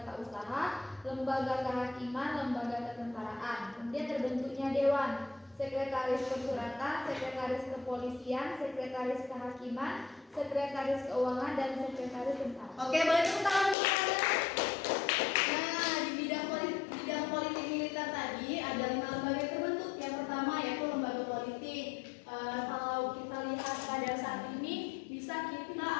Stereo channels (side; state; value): right; drops out; at 13.8 s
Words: usaha, lembaga kehakiman, lembaga ketentaraan. Kemudian terbentuknya dewan, sekretaris persuratan, sekretaris kepolisian, sekretaris kehakiman, sekretaris keuangan, dan sekretaris tentara. Oke, boleh tepuk tangan untuk Anda. Nah, di bidang politik militer tadi ada 5 lembaga yang terbentuk. Yang pertama yaitu lembaga politik. Kalau kita lihat pada saat ini bisa kita